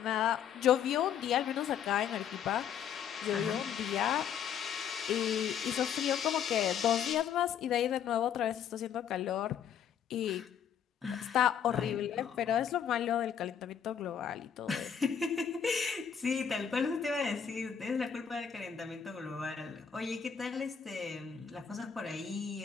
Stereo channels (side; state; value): right; quieter; 8.2 dB